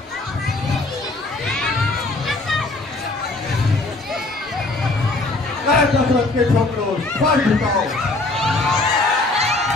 दशरथ के छोकरों, सर झुकाओ।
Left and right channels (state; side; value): quieter; right; 3.1 dB